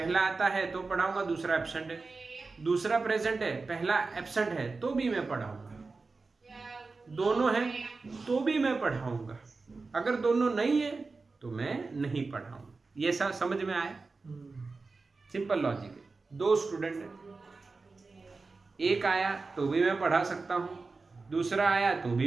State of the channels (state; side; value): quieter; left; 4.0 dB